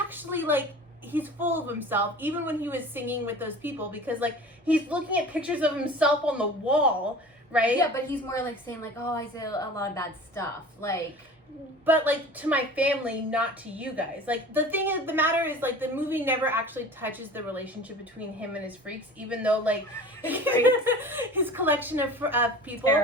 like he's full of himself, even when he was singing with those people, because like he's looking at pictures of himself on the wall, right? Yeah, but he's more like saying like, oh, I say a lot of bad stuff, like. But like, to my family, not to you guys. Like, the thing is, the matter is, like, the movie never actually touches the relationship between him and his freaks, even though like his collection of people.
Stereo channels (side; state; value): both; normal; correlation 0.40